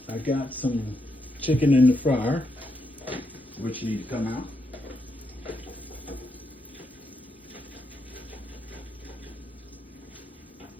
got some chicken in the fryer, which need to come out.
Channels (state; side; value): normal; both; correlation 0.81